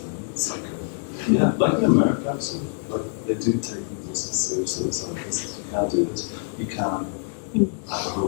It's like like in America actually. Like they do take music seriously. It's like this. You can't do this. You can't have a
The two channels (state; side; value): silent; right; 62 dB below the other